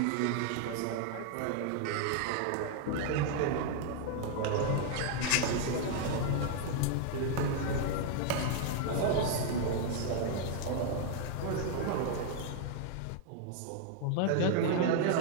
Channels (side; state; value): both; different; correlation 0.00